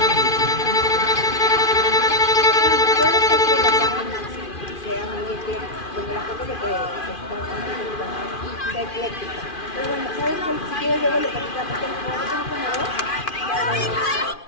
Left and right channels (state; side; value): late; right; 2.4 ms